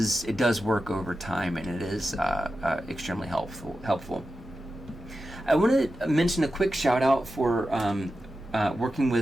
work over time, and it is extremely helpful. I want to mention a quick shout out for working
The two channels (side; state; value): both; normal; correlation 0.91